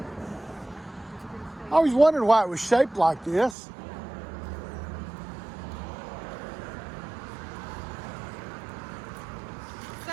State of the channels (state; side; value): drops out; left; at 3.6 s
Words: I always wondered why it was shaped like this.